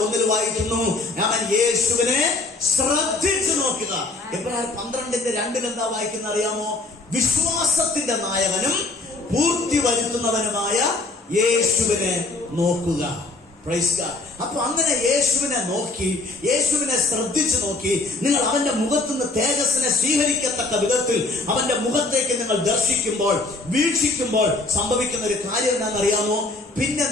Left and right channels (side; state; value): right; quieter; 3.1 dB